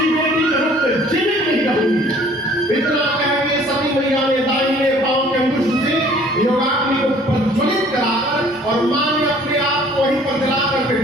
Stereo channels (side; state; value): both; normal; correlation 0.54